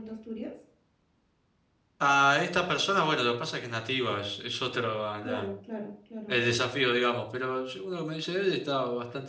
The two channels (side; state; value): both; identical; correlation 1.00